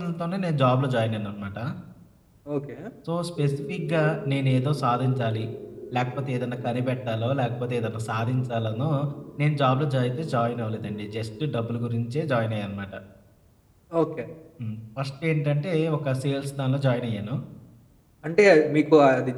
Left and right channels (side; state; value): both; identical; correlation 1.00